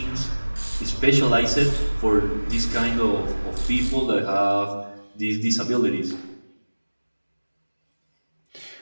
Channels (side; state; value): both; inverted; correlation -1.00